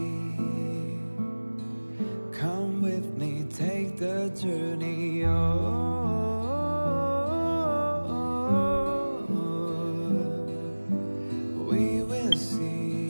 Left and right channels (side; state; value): both; inverted; correlation -1.00